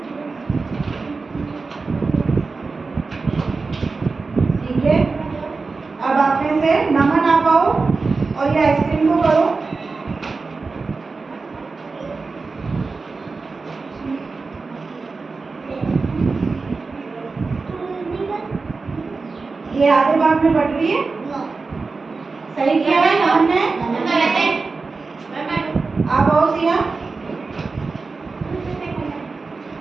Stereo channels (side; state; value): left; quieter; 4.1 dB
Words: ठीक है? अब आप में से नमन आप आओ और ये आइसक्रीम को करो। ये आधे भाग में बट रही है। सही किया है नमन ने। आप आओ सिया।